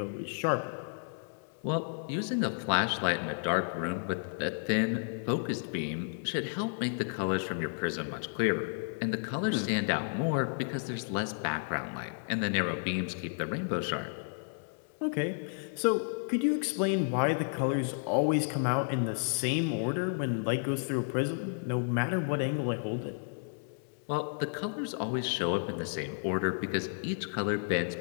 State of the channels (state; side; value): silent; right; digital silence